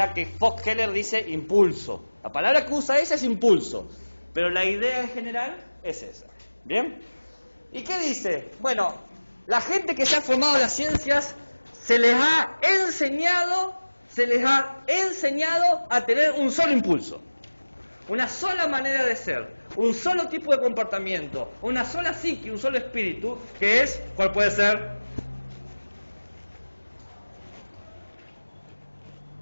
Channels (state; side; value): inverted; both; correlation -1.00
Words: que Foxheller dice impulso. La palabra que usa esa es impulso, pero la idea en general es esa. ¿Bien? ¿Y qué dice? Bueno, la gente que se ha formado en las ciencias se les ha enseñado a tener un solo impulso, una sola manera de ser, un solo tipo de comportamiento, una sola psique, un solo espíritu, que es, ¿cuál puede ser?